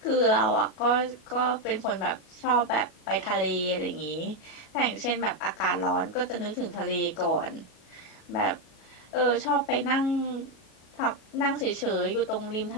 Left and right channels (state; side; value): late; right; 37 ms